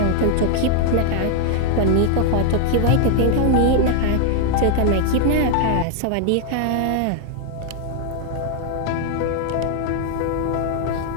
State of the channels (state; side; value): different; both; correlation 0.00